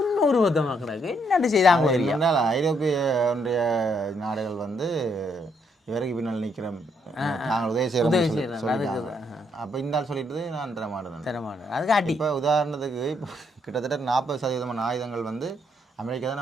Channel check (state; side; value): normal; both; correlation 0.73